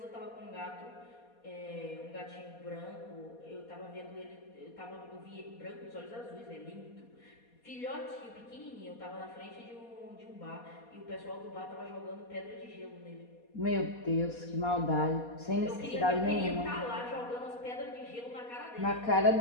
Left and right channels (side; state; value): right; late; 4.2 ms